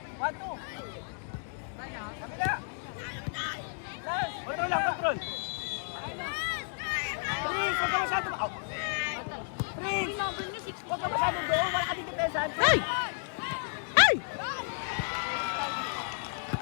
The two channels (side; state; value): right; silent; 56 dB below the other